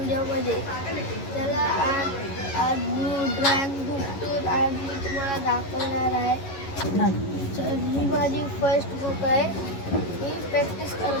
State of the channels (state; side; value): late; right; 11 ms